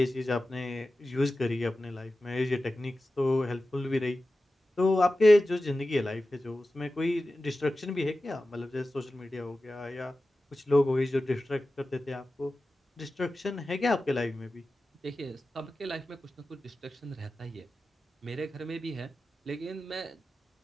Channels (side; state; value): both; normal; correlation 0.94